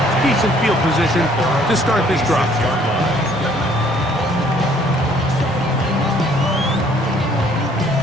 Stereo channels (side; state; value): both; normal; correlation 0.60